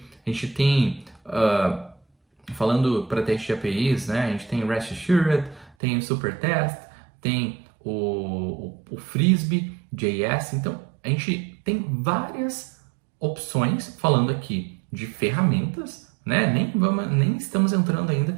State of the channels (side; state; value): left; drops out; at 5.8 s